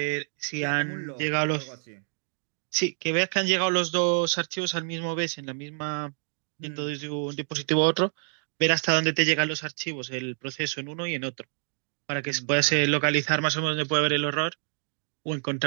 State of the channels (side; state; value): left; silent; digital silence